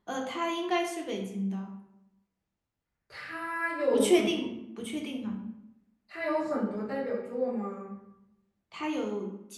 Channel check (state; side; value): identical; both; correlation 1.00